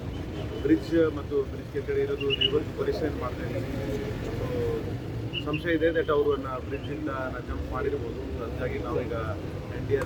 ಬ್ರಿಡ್ಜ್ ಮತ್ತು ಬ್ರಿಡ್ಜ್ ಕೆಳಗಡೆ ಇರೋದು ರಿವರ್ಸ್ ಪರಿಶೀಲನೆ ಮಾಡ್ತಾ ಇದ್ದೀವಿ. ಸಂಶಯ ಇದೆ ದಟ್ ಅವರನ್ನ ಬ್ರಿಡ್ಜಿಂದ ಜಂಪ್ ಮಾಡಿರ್ಬೋದು. ಹಾಗಾಗಿ ನಾವೀಗ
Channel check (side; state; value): both; identical; correlation 1.00